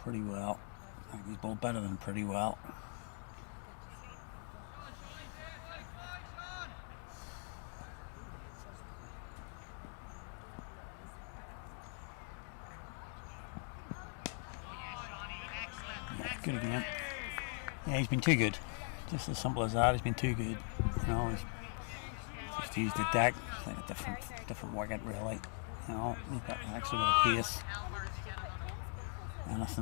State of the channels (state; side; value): silent; right; 50 dB below the other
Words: well. I think he's bowled better than pretty well. Good again. Yeah, he's been too good. Just as simple as that. He's been too good. You know, he's just used the deck. It's like a different wicket, really. You know, he's got actually with a pace.